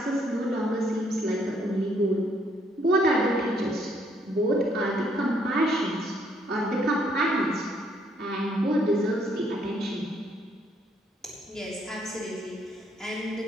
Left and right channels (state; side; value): normal; both; correlation 0.69